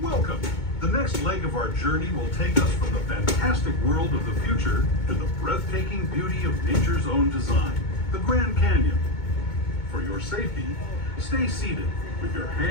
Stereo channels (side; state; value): right; late; 2.2 ms